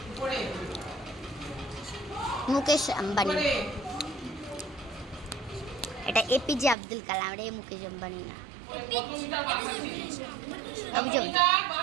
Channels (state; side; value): drops out; left; at 6.8 s